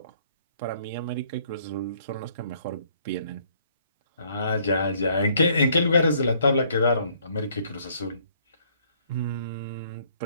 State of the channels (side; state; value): both; inverted; correlation -0.64